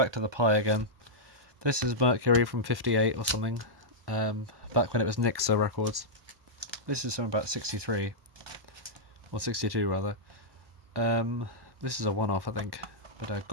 to the Pi again. This is Mercury from 58 or something, back when it was Nixa Records. This is from about 63, or 62 rather. This is a one-off, I think, but a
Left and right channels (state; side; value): late; left; 1.2 ms